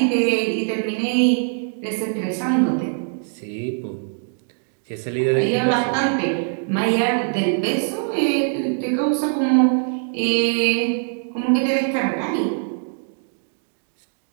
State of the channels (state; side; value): silent; left; digital silence